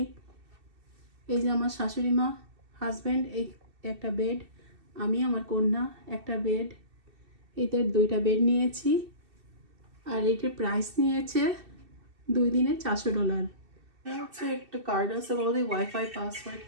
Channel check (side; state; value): left; late; 2.6 ms